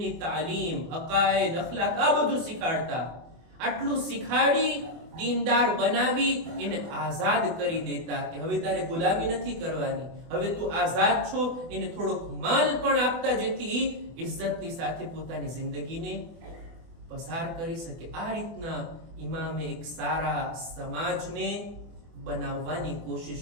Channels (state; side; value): late; left; 24 ms